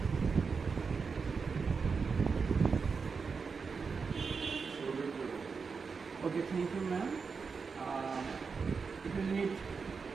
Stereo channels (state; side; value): quieter; left; 5.2 dB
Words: Okay, thank you, ma'am. If you need